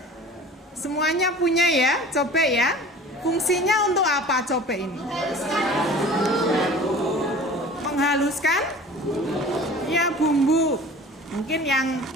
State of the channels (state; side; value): normal; both; correlation 0.42